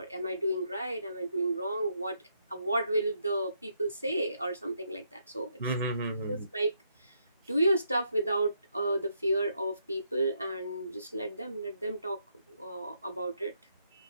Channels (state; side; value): inverted; both; correlation -0.76